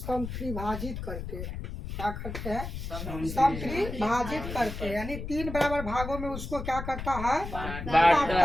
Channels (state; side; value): noise; left; rumble, 7 dB below the sound